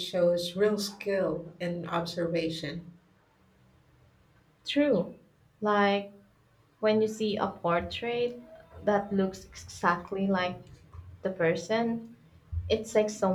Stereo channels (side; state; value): both; identical; correlation 1.00